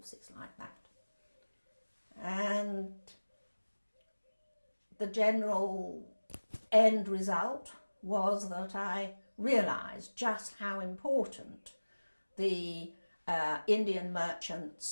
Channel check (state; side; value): inverted; both; correlation -1.00